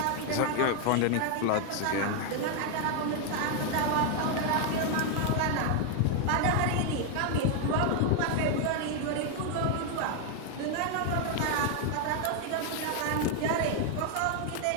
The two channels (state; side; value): different; both; correlation 0.00